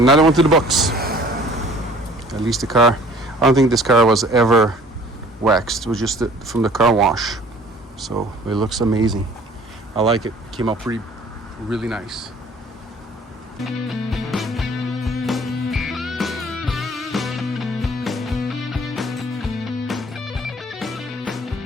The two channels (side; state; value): both; normal; correlation 0.52